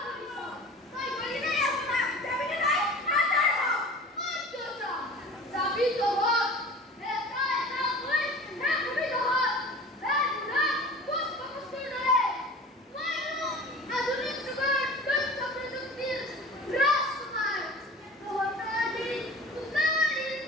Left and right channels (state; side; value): normal; both; correlation 0.40